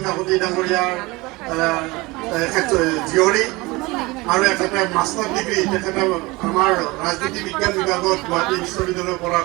কাকতি ডাঙৰীয়াৰ জীয়ৰী আৰু এখেতে মাষ্টাৰ ডিগ্ৰী তেখেতে আমাৰ ৰাজনীতি বিজ্ঞান বিভাগত গুৱাহাটী বিশ্ববিদ্যালয়ৰ পৰা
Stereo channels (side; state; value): left; quieter; 22.9 dB